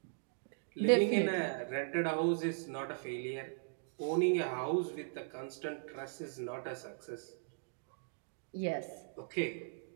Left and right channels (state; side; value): silent; left; digital silence